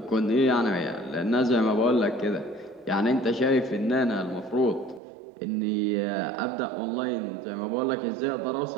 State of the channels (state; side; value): drops out; left; at 5.0 s